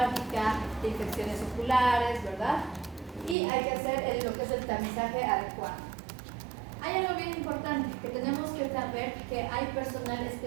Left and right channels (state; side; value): drops out; left; at 3.4 s